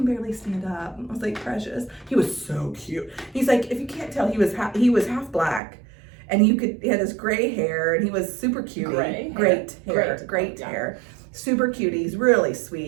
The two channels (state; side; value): drops out; left; at 5.6 s